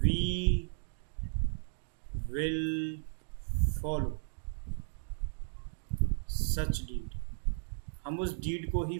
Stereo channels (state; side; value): silent; left; digital silence